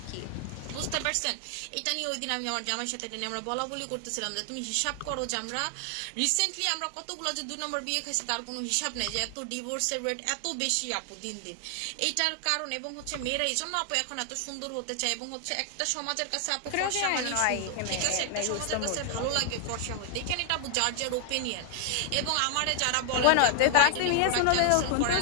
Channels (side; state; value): both; different; correlation 0.00